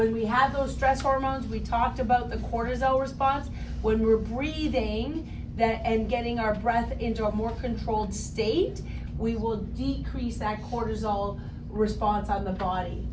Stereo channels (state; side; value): identical; both; correlation 1.00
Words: we have those stress hormones, we talked about the cortisol response. When we're breathing that and getting our breath into a more controlled state, we will decrease that cortisol response on the body.